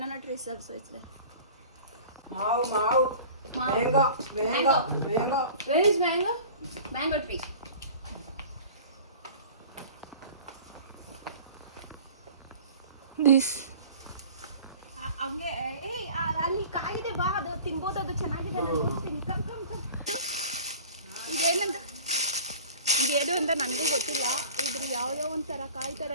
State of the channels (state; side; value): inverted; both; correlation -0.42